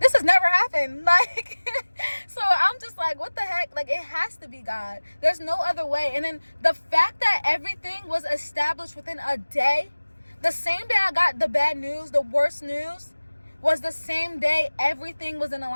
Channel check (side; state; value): both; inverted; correlation -1.00